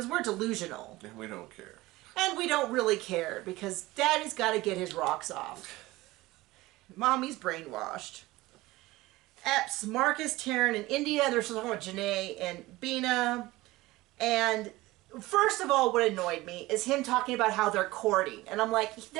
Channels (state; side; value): quieter; left; 19.3 dB